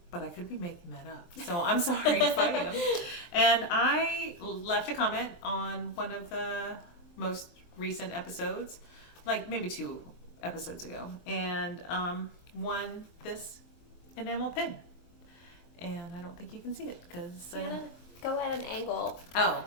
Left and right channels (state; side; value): late; right; 23 ms